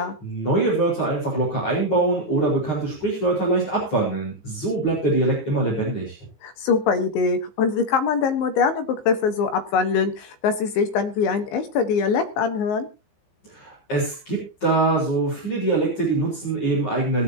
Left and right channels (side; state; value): right; late; 15 ms